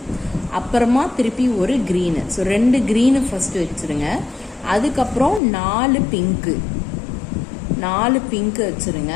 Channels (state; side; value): drops out; right; at 5.4 s